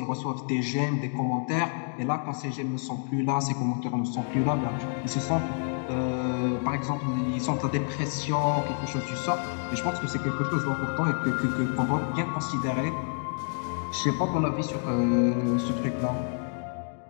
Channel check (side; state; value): right; silent; 58 dB below the other